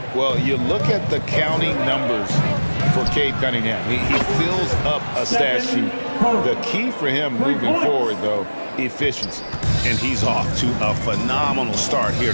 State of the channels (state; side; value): inverted; both; correlation -1.00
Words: Well, you look at the counting numbers for Cade Cunningham. He fills up a stat sheet. The key for him moving forward, though, efficiency. And he's off to a phenomenal start here